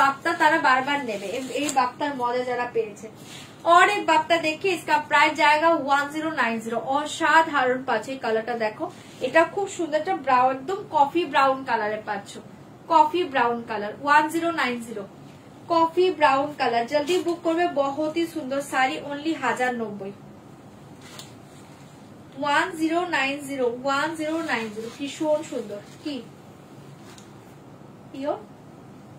তারা বারবার নেবে, এই বাপ্তার মজা যারা পেয়েছে। और एक बाप्ता देखिए, इसका प्राइस जाएगा 1090। অসাধারণ পাচ্ছ, এই কালারটা দেখো, এটা খুব সুন্দর একটা ব্রাউন, একদম কফি ব্রাউন কালারে পাচ্ছ, coffee brown colour. 1090 coffee brown colour, জলদি বুক করবে, বহুত ही সুন্দর শাড়ি, অনলি 1090। 1090 ভীষণ সুন্দর। কি পিওর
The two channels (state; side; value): identical; both; correlation 1.00